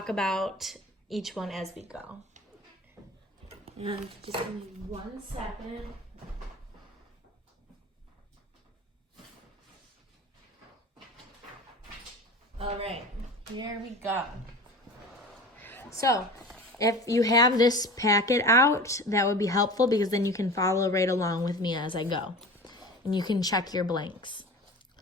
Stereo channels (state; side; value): normal; both; correlation 0.36